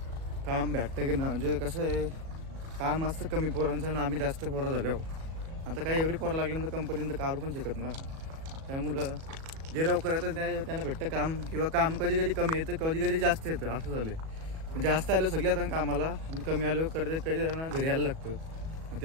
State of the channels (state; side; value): late; left; 37 ms